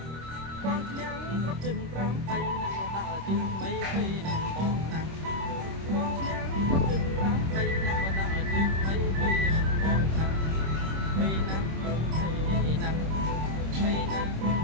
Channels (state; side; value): late; left; 26 ms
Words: បងឈ្នះគ្រប់ជើង5 3ណាស់ក៏ដើរជើងថ្មីភ័យនឹងបងណាស់បងឈ្នះគ្រប់ជើង5 3ណាស់ក៏ដើរជើងថ្មីភ័យនឹងបងណាស់ភ័យណាស់ភ័យណាស់ភ័យណាស់ភ